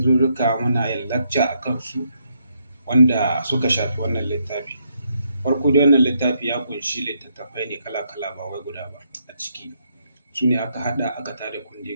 muna yin lacca a kansu wanda suka shafi wannan littafi. Farko dai wannan littafi ya kunshi littattafai ne kala-kala ba wai guda ba a ciki. Su ne aka haɗa aka tada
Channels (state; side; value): inverted; both; correlation -0.76